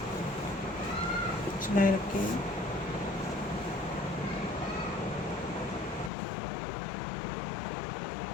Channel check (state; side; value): drops out; right; at 6.1 s